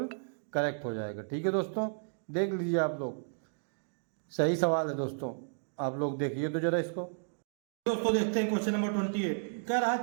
करेक्ट हो जाएगा। ठीक है दोस्तों, देख लीजिए आप लोग, सही सवाल है दोस्तों, आप लोग देखिए तो जरा इसको। दोस्तों देखते हैं क्वेश्चन नंबर 28। कह रहा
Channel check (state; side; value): silent; left; digital silence